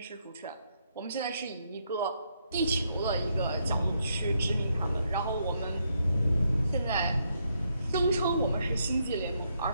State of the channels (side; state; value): both; inverted; correlation -0.77